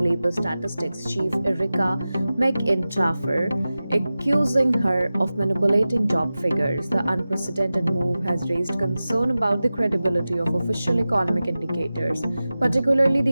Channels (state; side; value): inverted; both; correlation -0.96